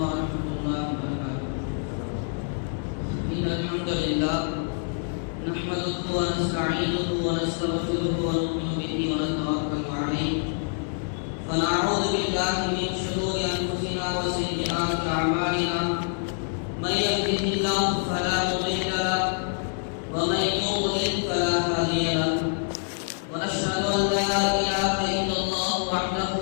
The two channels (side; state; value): right; silent; 61 dB below the other